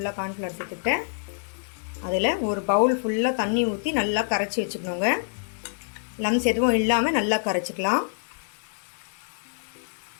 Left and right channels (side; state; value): right; silent; 61 dB below the other